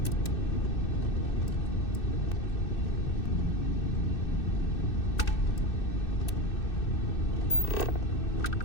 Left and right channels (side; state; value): right; late; 2.6 ms